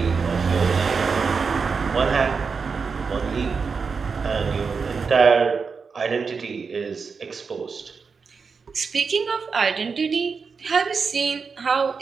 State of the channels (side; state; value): left; quieter; 5.3 dB